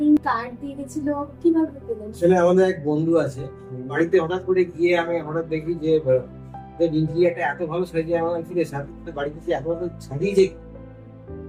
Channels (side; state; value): both; identical; correlation 1.00